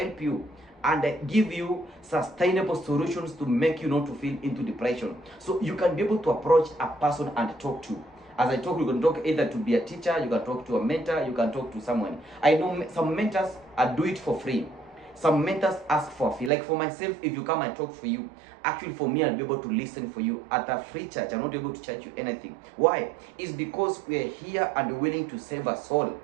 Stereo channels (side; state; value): left; drops out; at 16.5 s